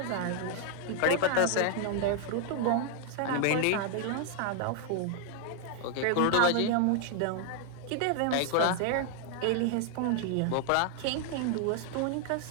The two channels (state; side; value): different; both; correlation 0.00